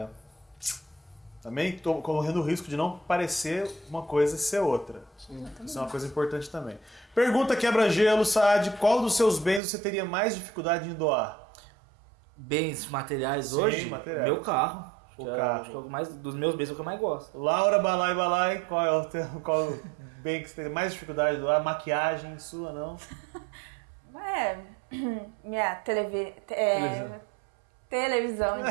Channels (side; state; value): left; drops out; at 9.6 s